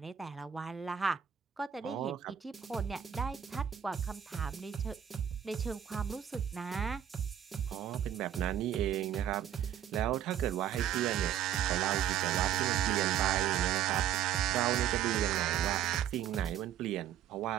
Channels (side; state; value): left; quieter; 10.0 dB